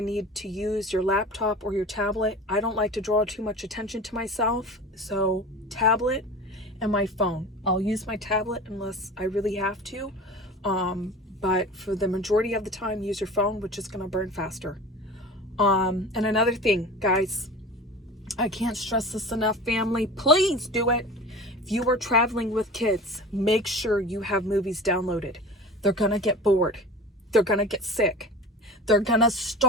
need to use your laptop or your tablet. I don't like to draw too much attention to myself, so tablet and my phone. I'll use my tablet unless I really have to, but for the majority of the time, use your phone, which is going to burn faster. And another thing, guys, I can't stress this enough, family. Please do it. If you are traveling with kids, make sure you have movies downloaded. They're going to get bored. They're going to get sick. They're going to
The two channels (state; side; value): normal; both; correlation 0.35